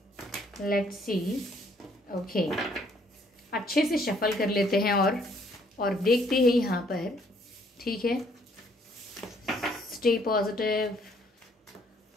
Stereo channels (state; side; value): normal; both; correlation 0.65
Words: लेट्स सी। ओके, अच्छे से शफल कर लेते हैं और देखते हैं यहाँ पर। ठीक है, stay positive.